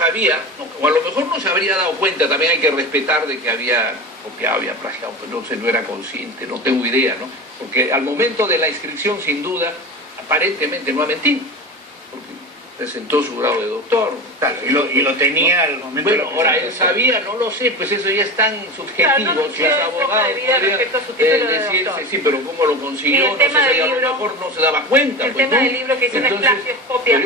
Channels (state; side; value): normal; both; correlation 0.28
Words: o a lo mejor no se habría dado cuenta, también hay que respetar de que había copiado, había plagiado, pero no era consciente, no tengo idea, ¿no? Porque al momento de la inscripción, sin duda, aparentemente no ha mentido. Presentó su grado de doctor. Claro, y lo tenía al momento. Bueno, ahora él sabía, no lo sé, pues eso ya es tan subjetivo. Claro, si es abogado, podría decirse, sí, pero cómo lo consiguió, no sé, si a lo mejor no se daba cuenta. El pues, tema ¿no? del libro que dice no es plagio, es copia.